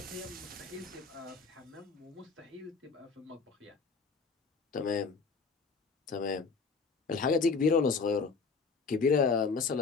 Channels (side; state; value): right; quieter; 4.7 dB